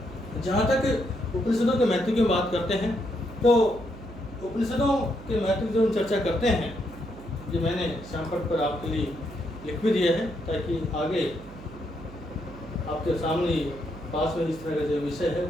जहाँ तक उपनिषदों के महत्व की बात करते हैं, तो उपनिषदों के महत्व की जो हम चर्चा करते हैं, ये मैंने शामपट पर आपके लिए लिख भी दिया है, ताकि आगे आपके सामने पास में इस तरह का जो विषय है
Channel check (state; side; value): noise; right; hum, 16 dB below the sound